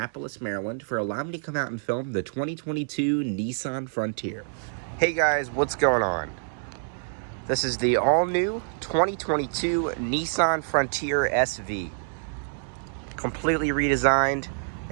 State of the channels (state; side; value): silent; left; digital silence